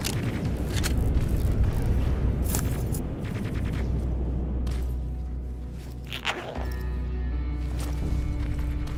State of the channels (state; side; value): identical; both; correlation 1.00